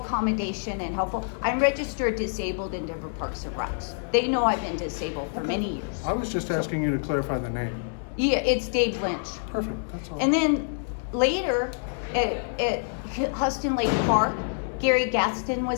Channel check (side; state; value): right; silent; 60 dB below the other